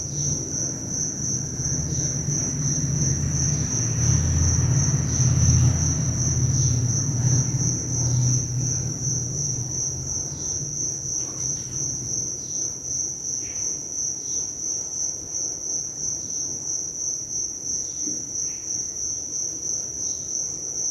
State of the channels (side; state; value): both; identical; correlation 1.00